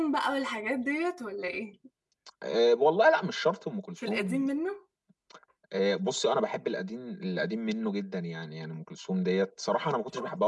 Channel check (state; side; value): identical; both; correlation 1.00